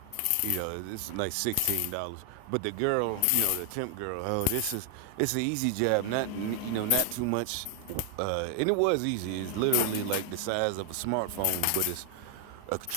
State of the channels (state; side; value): different; both; correlation 0.00